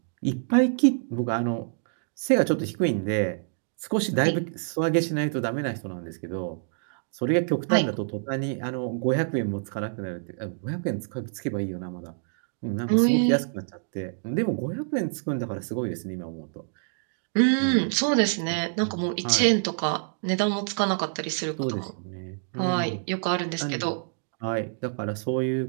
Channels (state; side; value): silent; left; digital silence